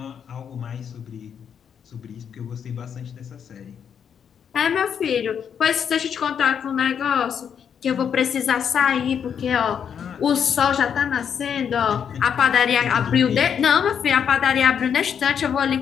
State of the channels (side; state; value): right; quieter; 7.8 dB